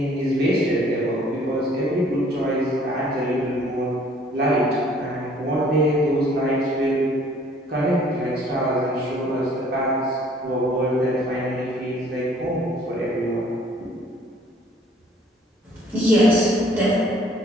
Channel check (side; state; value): both; normal; correlation 0.57